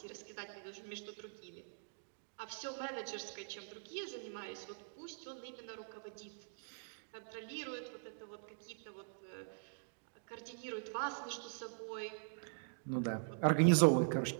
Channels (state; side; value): silent; left; digital silence